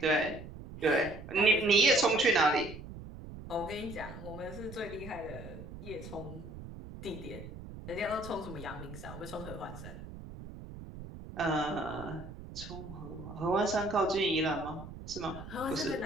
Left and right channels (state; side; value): noise; right; rumble, 12 dB below the sound